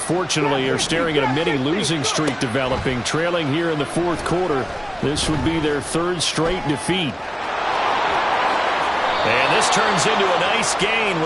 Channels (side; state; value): both; identical; correlation 1.00